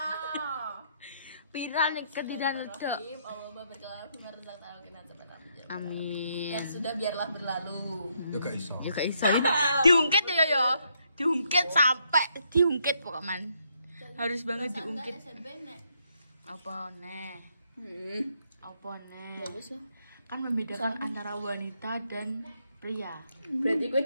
Viral nih kendilan ledok. Amin. Dan sudah biarlah berlalu. Ya gak iso. Ya gak iso. Diungkit ya. Diungkit sampai diungkit pokoknya. Harus banget diungkit. Apa nih? Apa nih? Kan membedakan antara wanita dan pria. Berarti gue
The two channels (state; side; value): inverted; both; correlation -0.75